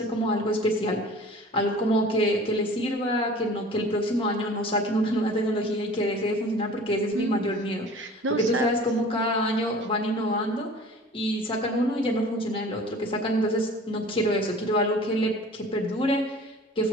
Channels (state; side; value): normal; both; correlation 0.44